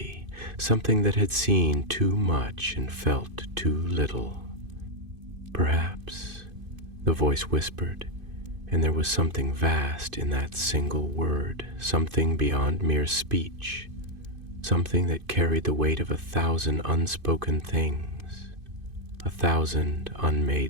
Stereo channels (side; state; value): left; late; 2.5 ms